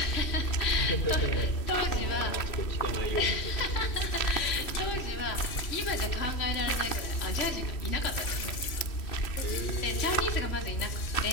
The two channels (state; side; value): late; right; 3.0 ms